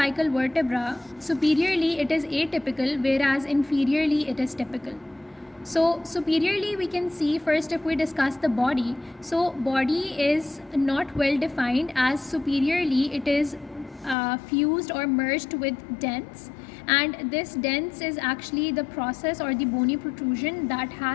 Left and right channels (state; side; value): drops out; right; at 14.2 s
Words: vertebra, superiorly it is atypical, whereas inferiorly it is typical. So superiorly we can see, first if we discuss the body, so body is not well defined, as superiorly it is fused or merged with dents, and this dents is actually the process or the bony protrusion that